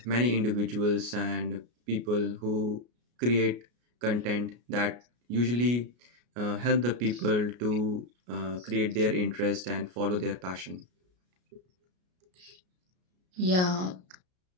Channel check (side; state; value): left; late; 33 ms